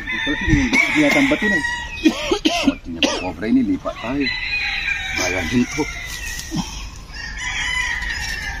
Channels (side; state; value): both; identical; correlation 1.00